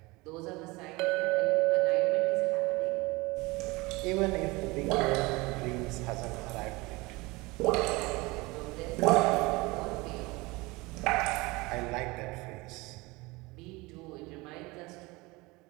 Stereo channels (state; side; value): quieter; left; 23.4 dB